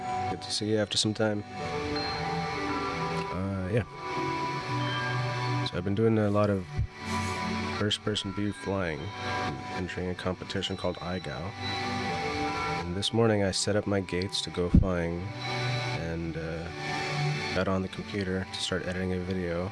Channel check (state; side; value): identical; both; correlation 1.00